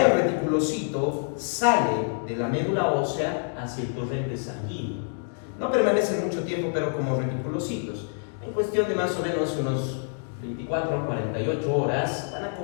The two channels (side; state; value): right; silent; 60 dB below the other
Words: el reticulocito sale de la médula ósea hacia el torrente sanguíneo. No permanecen mucho tiempo, pero como reticulocitos. En cuestión de más o menos unos 24 a 48 horas, van a